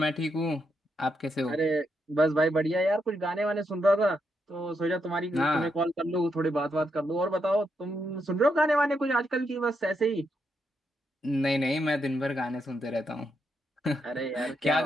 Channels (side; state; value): both; normal; correlation 0.81